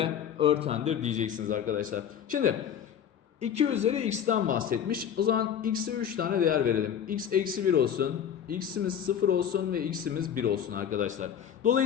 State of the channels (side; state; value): right; quieter; 8.9 dB